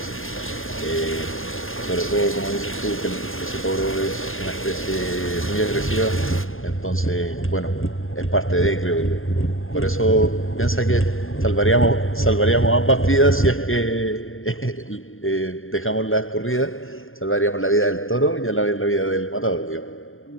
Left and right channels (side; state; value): right; late; 0.60 ms